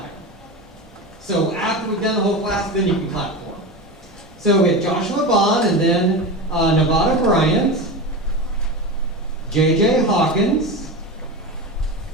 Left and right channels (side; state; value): both; normal; correlation 0.24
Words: So after we've done the whole class, then you can clap for them. So we have Joshua Bond and then Nevada Bryant, J.J. Hawkins,